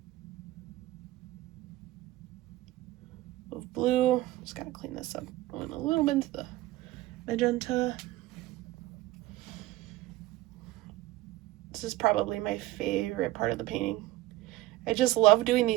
of blue. Just gotta clean this up. Going a little bit into the magenta. This is probably my favorite part of the painting. I just love doing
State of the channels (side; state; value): left; quieter; 16.8 dB